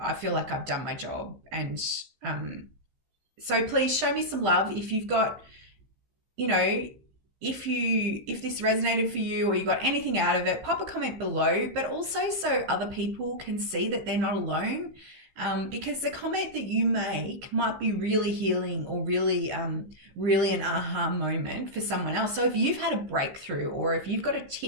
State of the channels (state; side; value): late; left; 15 ms